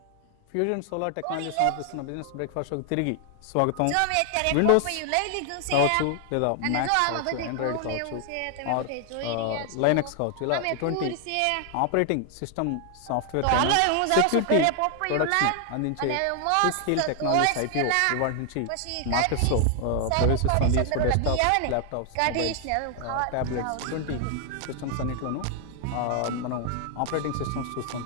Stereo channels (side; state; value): both; different; correlation 0.00